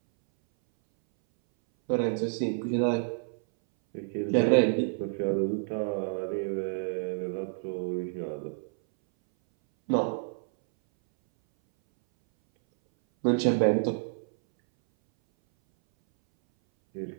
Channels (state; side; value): silent; left; 59 dB below the other